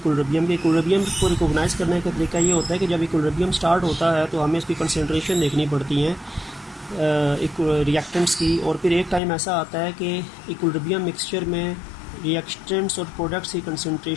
के। इक्विलिब्रियम को रिकोगनाइज करने का तरीका ये होता है कि जब इक्विलिब्रियम स्टार्ट होता है तो हमें इसकी कंसंट्रेशन देखनी पड़ती है रिएक्टेंट्स की, और फिर एक टाइम ऐसा आता है कि इक्विलिब्रियम मिक्सचर में रिएक्टेंट्स और प्रोडक्ट्स की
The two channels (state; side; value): drops out; right; at 9.2 s